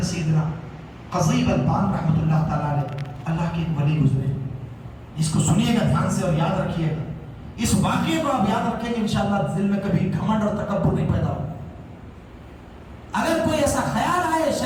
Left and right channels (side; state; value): both; identical; correlation 1.00